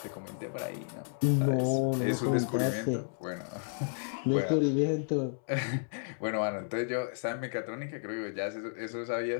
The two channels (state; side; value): silent; right; 56 dB below the other